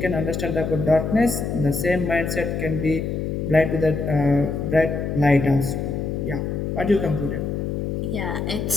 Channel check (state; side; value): noise; left; hum, 2 dB below the sound